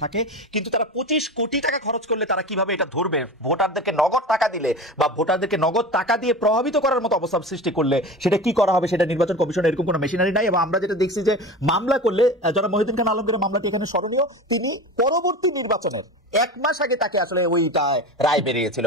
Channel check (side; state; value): both; normal; correlation 0.30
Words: থাকে, কিন্তু তারা 25 কোটি টাকা খরচ করলে তারা কিভাবে এটা ধরবে? ভোটারদেরকে নগদ টাকা দিলে বা ভোটারদেরকে নগদ টাকা দিয়ে প্রভাবিত করার মতো অবস্থা সৃষ্টি করলে সেটা কি করা হবে? সেটা নির্বাচন কমিশনের এরকম কোনো মেশিনারি নাই। এবং আমরা যেটা দেখছি যে মামলা করলে, যারা মহিউদ্দিন খান আলমগীরের মামলাটি এখানে স্মরণীয়, তিনি পরবর্তী নির্বাচনের 1 মাস আগে তাকে আসলে ওইটা রায় বেরিয়েছিল,